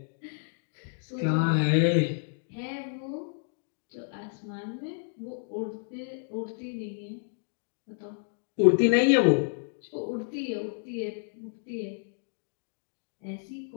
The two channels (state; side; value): silent; right; digital silence